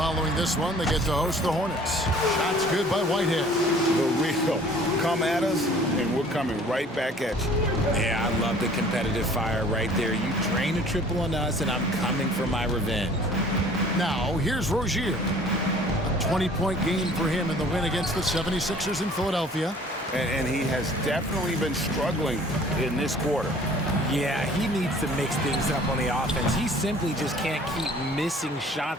this one, they get to host the Hornets. Shots good by Whitehead. The real come at us, and we're coming right back at you. Yeah, I love the competitive fire right there. You drain a triple on us, and I'm coming for my revenge. Now, here's Rozier. A 20-point game for him in the win against the 76ers in Philadelphia. And he has definitely been struggling in this quarter. Yeah, he needs to mix things up on the offense. He simply just can't keep missing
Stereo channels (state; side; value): normal; both; correlation 0.52